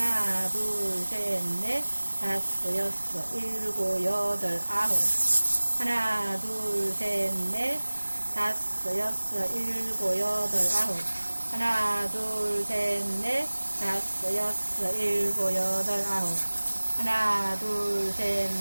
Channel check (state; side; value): inverted; both; correlation -1.00